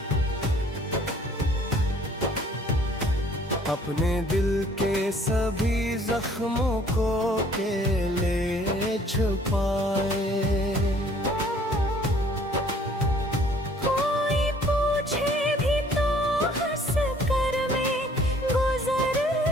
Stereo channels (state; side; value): normal; both; correlation 0.57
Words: अपने दिल के सभी जख्मों को अकेले छुपाए। कोई पूछे भी तो हंस कर मैं गुजर